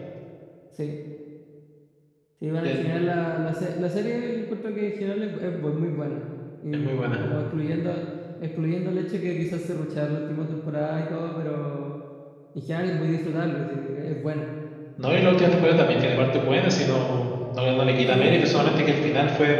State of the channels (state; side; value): identical; both; correlation 1.00